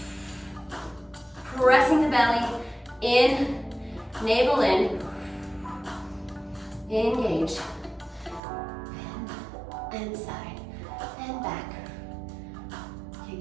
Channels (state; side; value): drops out; left; at 8.4 s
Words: Pressing the belly in, navel in. Engage. And side and back.